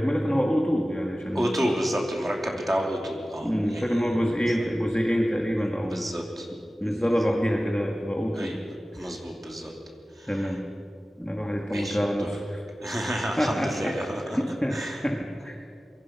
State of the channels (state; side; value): normal; both; correlation 0.96